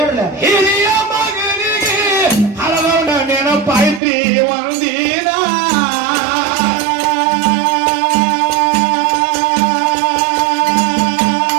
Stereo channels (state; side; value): drops out; left; at 4.0 s